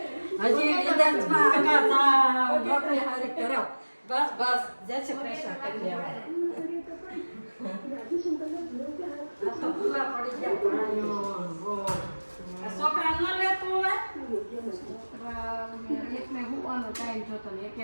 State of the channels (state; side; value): inverted; both; correlation -1.00